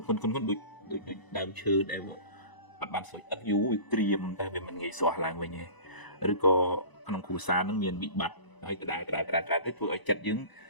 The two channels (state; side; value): late; right; 1.0 ms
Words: ដូចដើមឈើដែលអត់បានសម្អិតយូរវាក្រៀមតែវាមិនងាយស្រួលឡើងវិញទេឬក៏ក្នុងគ្រួសារនឹងមានវិបត្តិហើយដដែលទៅធ្វើឲ្យចិត្តយើង